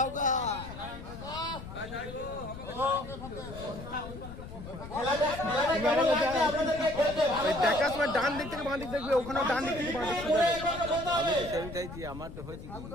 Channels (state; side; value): noise; left; rumble, 12 dB below the sound